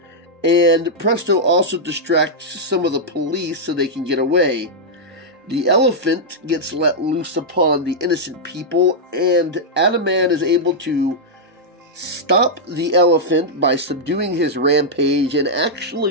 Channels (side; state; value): both; normal; correlation -0.06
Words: and Presto also distracts some of the police so they can get away. The elephant gets let loose upon the innocent people, and Atoman is able to stop the elephant by subduing his rampage and